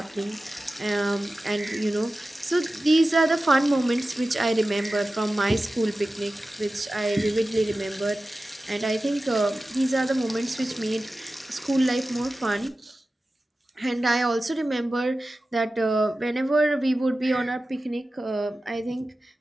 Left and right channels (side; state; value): both; normal; correlation 0.95